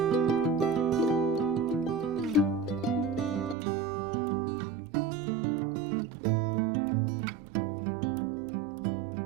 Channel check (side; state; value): left; drops out; at 3.6 s